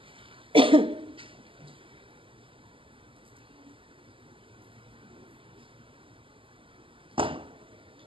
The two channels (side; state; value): left; late; 0.25 ms